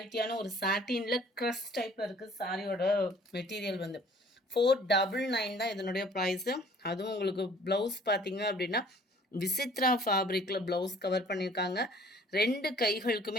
ஒரு சாட்டினில் க்ரஷ் டைப்பில் இருக்குது சாரியோட மெட்டீரியல் வந்து. 499 தான் இதனுடைய ப்ரைஸு. அதுவும் உங்களுக்கு ப்ளவுஸ் பார்த்தீங்க அப்படின்னா விசித்ரா ஃபேப்ரிக்கில் ப்ளவுஸ் கவர் பண்ணியிருக்காங்க. 2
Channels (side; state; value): both; normal; correlation 0.54